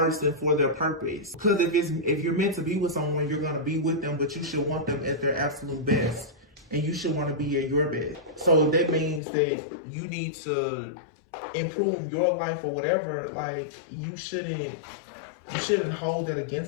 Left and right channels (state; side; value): drops out; right; at 9.2 s